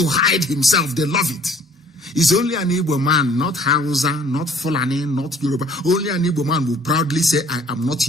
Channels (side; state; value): both; normal; correlation 0.55